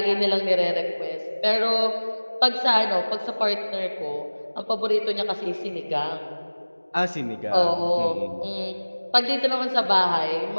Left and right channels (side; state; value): both; inverted; correlation -1.00